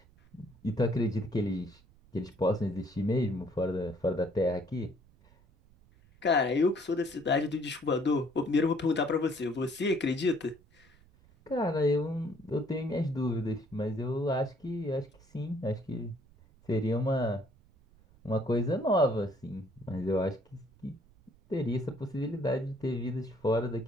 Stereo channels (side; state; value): right; noise; rumble, 28 dB below the sound